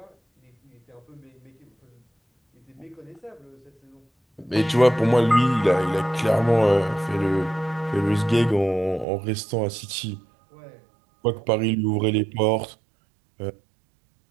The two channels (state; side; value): drops out; left; at 9.1 s